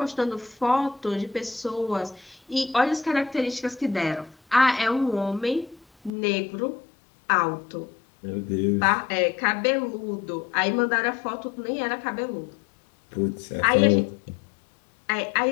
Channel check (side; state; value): right; drops out; at 6.1 s